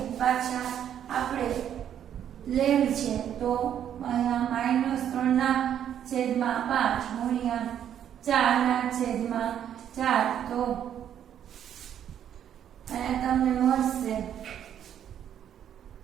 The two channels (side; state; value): left; quieter; 9.7 dB